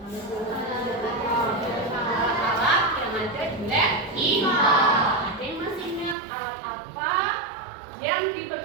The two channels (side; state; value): left; drops out; at 6.2 s